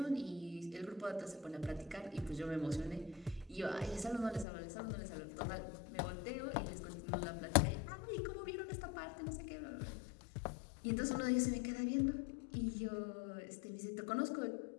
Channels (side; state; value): right; drops out; at 4.5 s